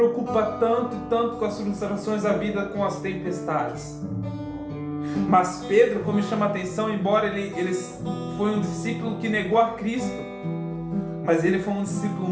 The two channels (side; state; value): both; identical; correlation 1.00